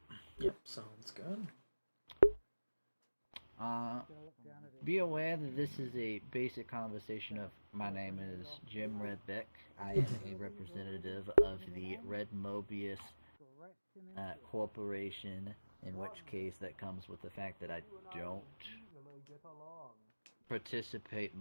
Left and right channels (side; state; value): both; inverted; correlation -1.00